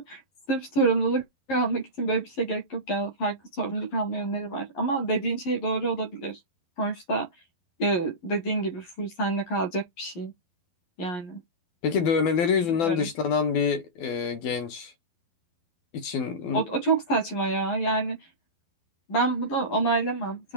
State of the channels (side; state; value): right; late; 12 ms